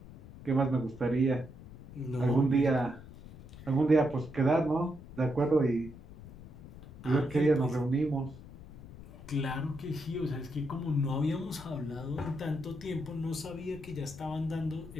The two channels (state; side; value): noise; left; rumble, 16 dB below the sound